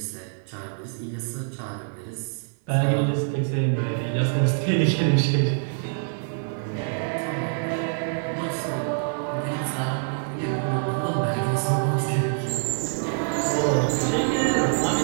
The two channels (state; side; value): silent; left; 55 dB below the other